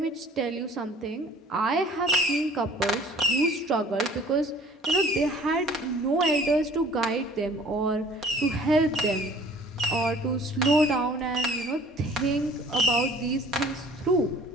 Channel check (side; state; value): both; normal; correlation 0.50